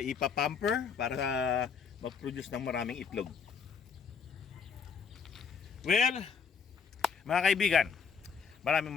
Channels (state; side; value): quieter; right; 6.3 dB